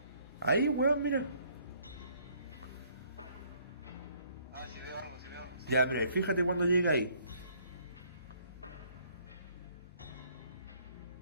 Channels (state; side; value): inverted; both; correlation -0.63